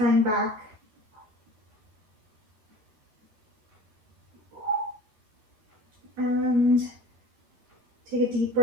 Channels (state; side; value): late; left; 13 ms